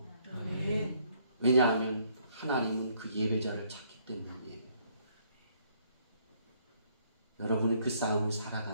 왜냐하면 하나님은 그 예배자를 찾기 때문이에요. 여러분은 그 싸움을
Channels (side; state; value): both; inverted; correlation -0.67